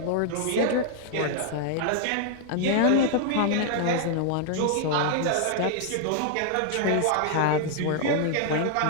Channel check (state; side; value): different; both; correlation 0.00